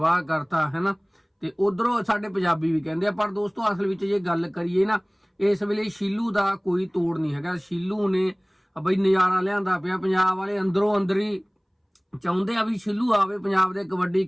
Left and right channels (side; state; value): both; identical; correlation 1.00